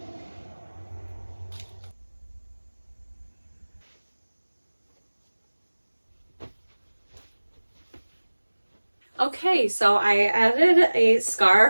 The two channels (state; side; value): inverted; both; correlation -1.00